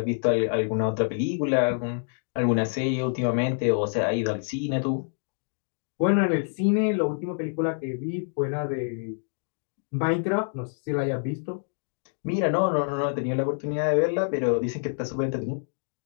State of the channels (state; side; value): silent; right; digital silence